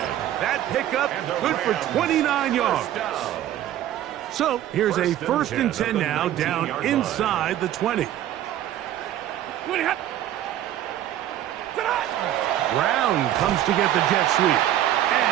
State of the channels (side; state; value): left; quieter; 12.4 dB